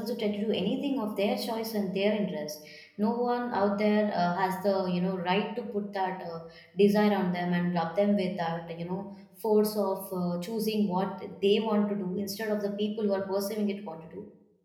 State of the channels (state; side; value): identical; both; correlation 1.00